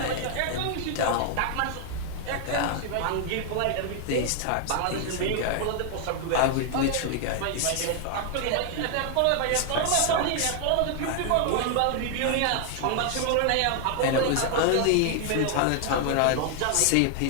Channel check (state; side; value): different; both; correlation 0.00